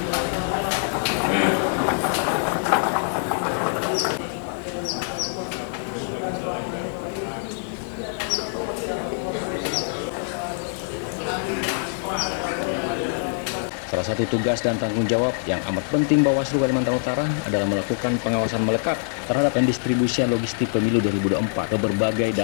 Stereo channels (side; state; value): right; silent; digital silence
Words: Salah satu tugas dan tanggung jawab yang amat penting Bawaslu Kalimantan Utara adalah melakukan pengawasan melekat terhadap pendistribusian logistik pemilu 2024 ke berbagai